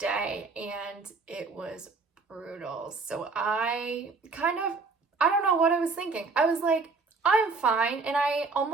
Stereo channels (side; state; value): left; quieter; 4.2 dB